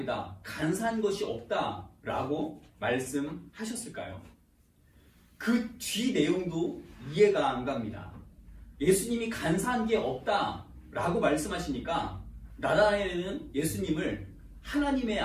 간사한 것이 없다 라고 말씀하셨을까요? 그 뒤 내용도 이해가 안 갑니다. 예수님이 간사한 게 없다 라고 말씀하시니까 나다나엘은 예수님을 하나님의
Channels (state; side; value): identical; both; correlation 1.00